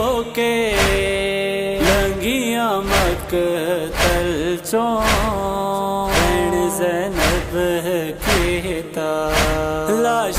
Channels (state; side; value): identical; both; correlation 1.00